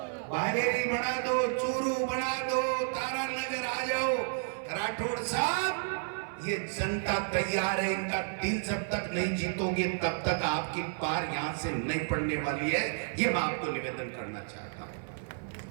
बालेरी बना दो, चूरू बना दो, तारा नगर आ जाओ। राठौड़ साहब ये जनता तैयार है, इनका दिल जब तक नहीं जीतोगे तब तक आपकी पार यहां से नहीं पड़ने वाली है। ये मैं आपको निवेदन करना चाहता हूं।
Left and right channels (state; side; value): silent; left; 57 dB below the other